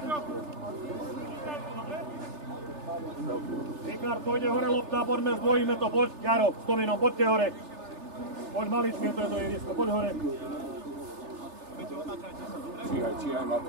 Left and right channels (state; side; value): late; left; 3.3 ms